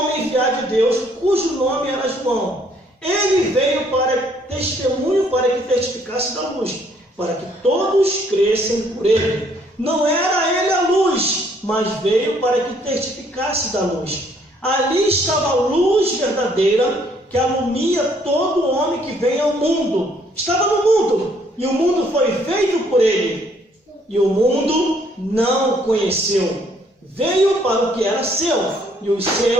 enviado de Deus, cujo nome era João. Ele veio para testemunho, para que testificasse da luz, para que todos crescem por ele. Não era ele a luz, mas veio para que testificasse da luz. Ali estava a luz verdadeira, que alumia todo homem que vem ao mundo. Estava no mundo, e o mundo foi feito por ele, e o mundo não o conheceu. Veio para o que era seu, e os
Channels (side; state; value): both; normal; correlation 0.65